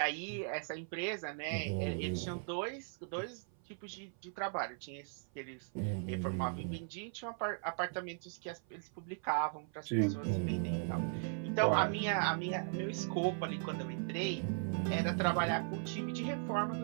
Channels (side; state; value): left; silent; 52 dB below the other